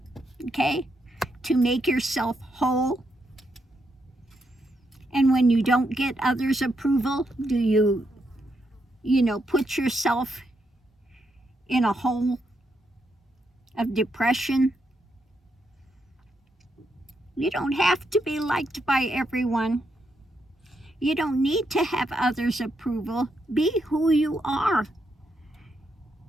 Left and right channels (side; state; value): both; normal; correlation 0.80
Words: Okay? To make yourself whole? And when you don't get others' approval, do you put yourself in a hole of depression? You don't have to be liked by everyone. You don't need to have others' approval. Be who you are.